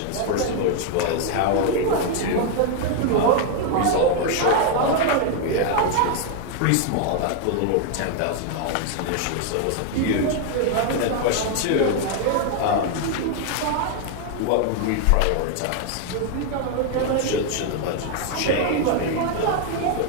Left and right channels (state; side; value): different; both; correlation 0.00